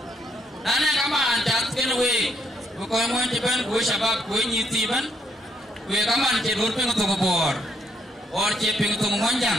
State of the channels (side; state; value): both; normal; correlation 0.73